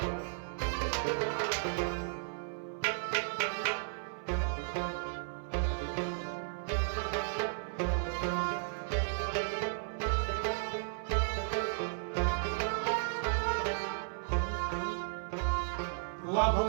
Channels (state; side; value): silent; left; 55 dB below the other